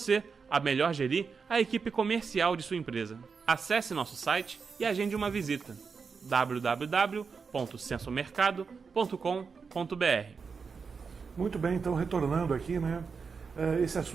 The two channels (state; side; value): quieter; left; 5.4 dB